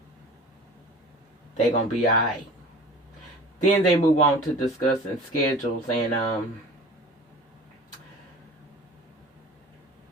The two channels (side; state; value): both; normal; correlation 0.42